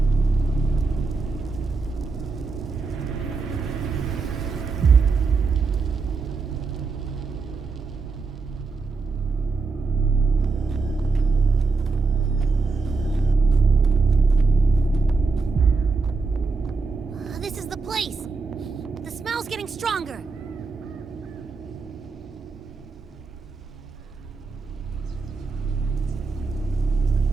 This is the place. The smell's getting stronger.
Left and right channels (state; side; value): quieter; left; 4.2 dB